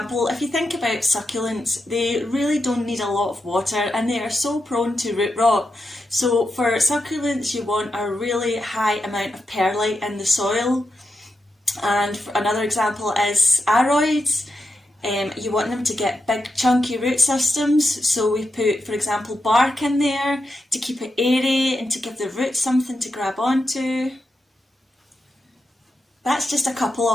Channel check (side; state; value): both; normal; correlation 0.87